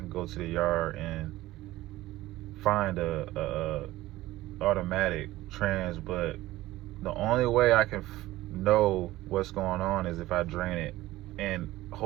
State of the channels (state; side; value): quieter; left; 16.8 dB